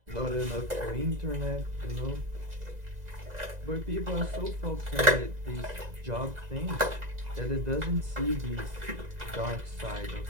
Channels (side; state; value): left; late; 2.0 ms